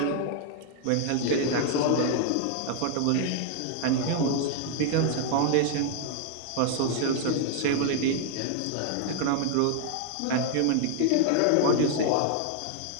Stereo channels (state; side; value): different; both; correlation 0.00